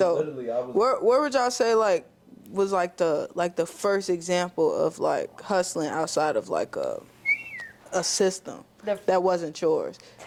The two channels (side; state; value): both; identical; correlation 1.00